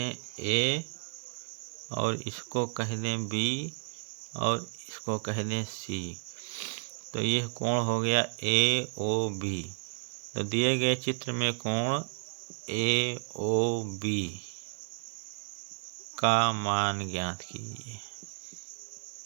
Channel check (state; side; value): silent; left; digital silence